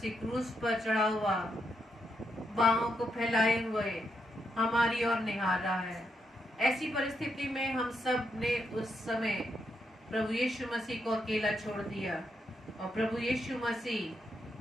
क्रूस पर चढ़ा हुआ बाहों को फैलाए हुए हमारी ओर निहार रहा है। ऐसी परिस्थिति में हम सब ने उस समय प्रभु यीशु मसीह को अकेला छोड़ दिया और प्रभु यीशु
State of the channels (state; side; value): normal; both; correlation 0.81